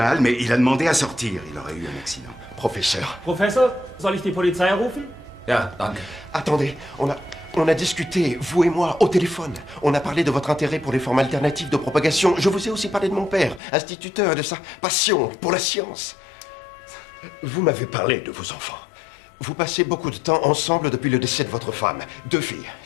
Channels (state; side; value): drops out; right; at 13.6 s